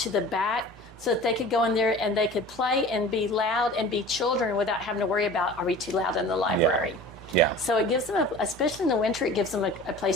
the back, so that they could go in there and they could play and be loud and be children without having to worry about, are we too loud in the library? Yeah. So it gives them, especially in the winter, it gives them a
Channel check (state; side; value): normal; both; correlation 0.41